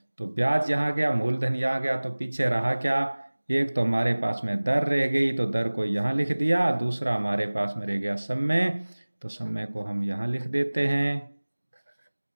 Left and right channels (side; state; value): both; inverted; correlation -1.00